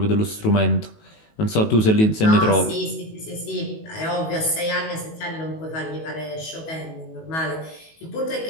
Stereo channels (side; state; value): right; late; 19 ms